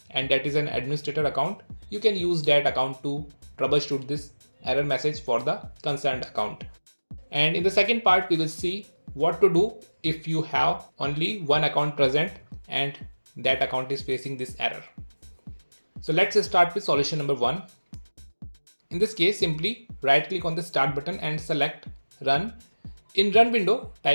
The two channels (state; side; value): inverted; both; correlation -1.00